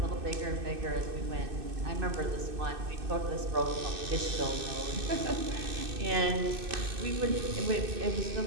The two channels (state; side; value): late; left; 2.6 ms